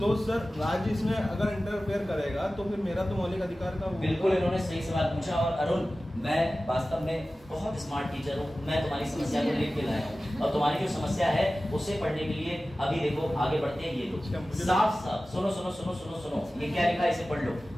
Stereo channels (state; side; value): normal; both; correlation 0.96